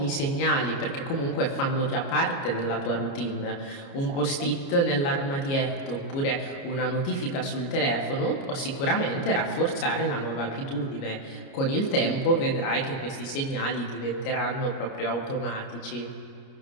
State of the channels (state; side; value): late; right; 29 ms